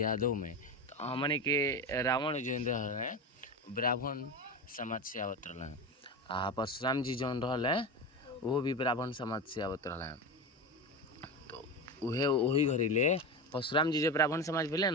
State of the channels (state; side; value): normal; both; correlation 0.21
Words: में। तो हमने के रावण जो रहे ब्राह्मण समाज से आवत रहे, आ परशुराम जी जौन रहे वो भी ब्राह्मण समाज से आवत रहे। तो उहे वही घड़ीले परशुराम जी जो ब्राह्मण समाज भेले